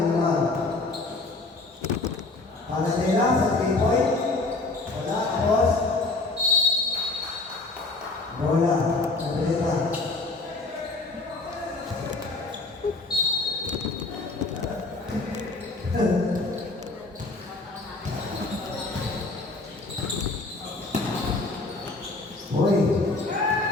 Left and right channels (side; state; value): right; quieter; 3.3 dB